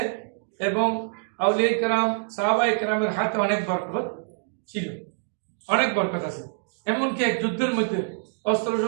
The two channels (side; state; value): left; silent; digital silence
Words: এবং আউলিয়া কেরাম সাহাবায়ে কেরামের হাতে অনেক বরকত ছিল, অনেক বরকত আছে। এমনকি এক যুদ্ধের মধ্যে অস্ত্র